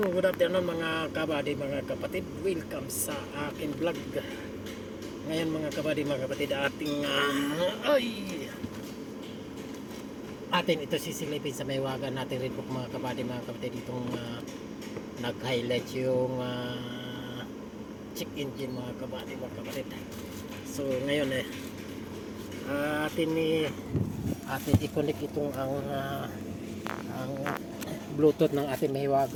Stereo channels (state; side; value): identical; both; correlation 1.00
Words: mga kabady, mga kapatid. Welcome sa akin vlog. Ngayon mga kabady, mga kapatid, atin ito sisilipin sa maywagan natin red book mga kabady, mga kapatid. Itong nag-highlight yung check engine mga kabady, mga kapatid. So ngayon atin i-connect itong ang Bluetooth ng ating